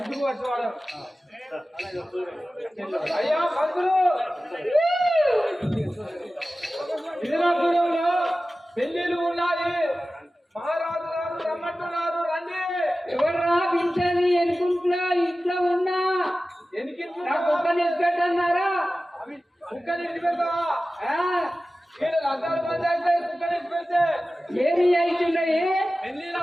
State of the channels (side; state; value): both; normal; correlation 0.95